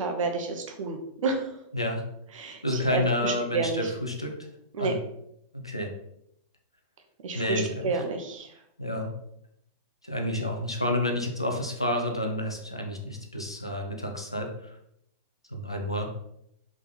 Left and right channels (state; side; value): inverted; both; correlation -0.32